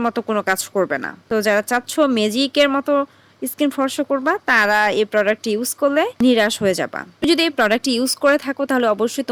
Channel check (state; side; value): identical; both; correlation 1.00